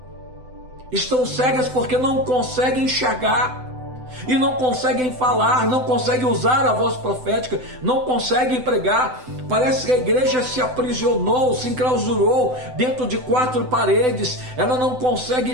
Estão cegas porque não conseguem enxergar, e não conseguem falar, não conseguem usar a voz profética, não conseguem pregar. Parece que a igreja se aprisionou, se enclausurou dentro de 4 paredes, ela não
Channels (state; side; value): late; left; 7.9 ms